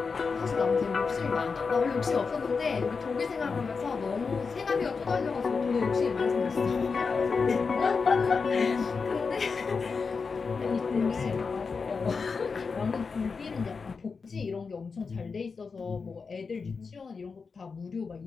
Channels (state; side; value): quieter; right; 5.0 dB